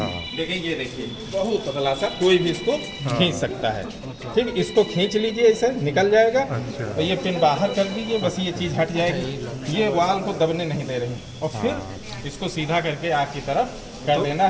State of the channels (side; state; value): both; identical; correlation 1.00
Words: देखिए, ये देखिए बहुत पतला सा, कोई भी इसको खींच सकता है। ठीक, इसको खींच लीजिए, ऐसे निकल जाएगा। अच्छा। और ये पिन बाहर कर दीजिए, बस ये चीज़ हट जाएगी। ये वाल को दबने नहीं दे रही। और फिर इसको सीधा करके आग की तरफ कर देना